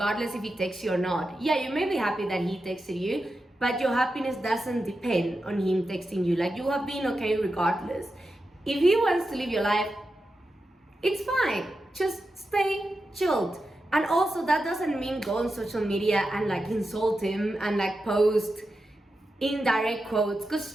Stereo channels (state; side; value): normal; both; correlation 0.90